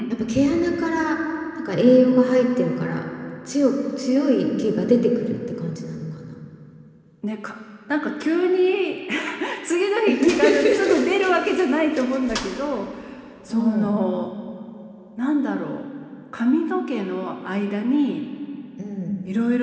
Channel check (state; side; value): identical; both; correlation 1.00